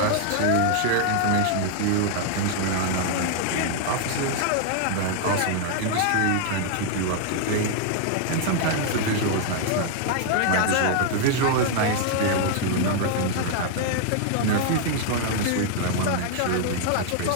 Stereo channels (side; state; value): both; different; correlation 0.00